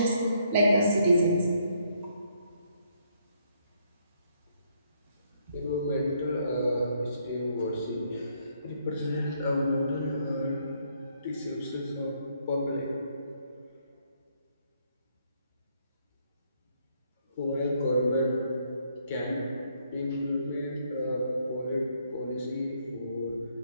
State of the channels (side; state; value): both; inverted; correlation -0.71